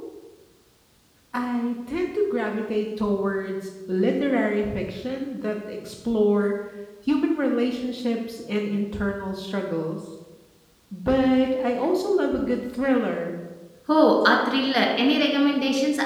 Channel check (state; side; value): identical; both; correlation 1.00